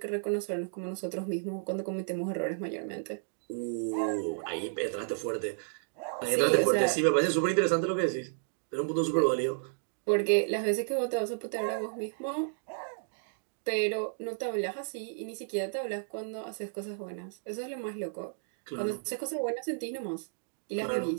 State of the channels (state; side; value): silent; left; digital silence